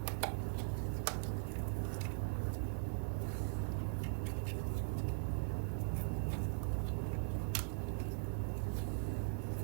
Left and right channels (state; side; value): silent; left; digital silence